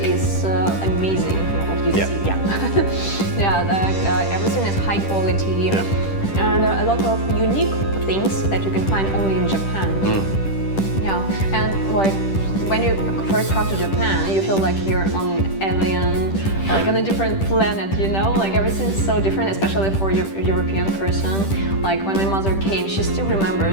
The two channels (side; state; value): right; late; 10 ms